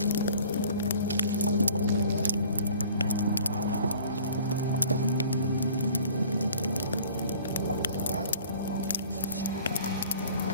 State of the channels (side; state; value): both; inverted; correlation -0.50